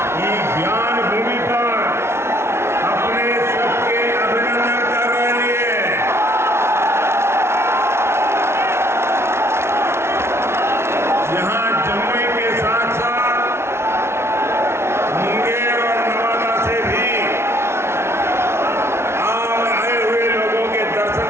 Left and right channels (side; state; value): left; late; 0.12 ms